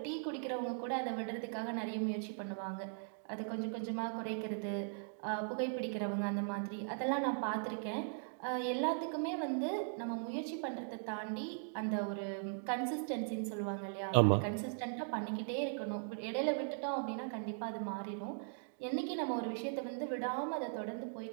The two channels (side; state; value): left; silent; digital silence